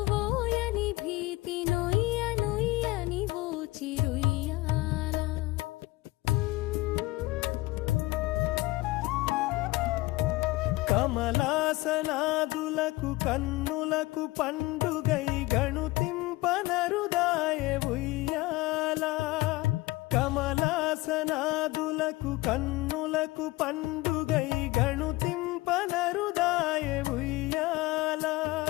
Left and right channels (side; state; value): right; quieter; 20.1 dB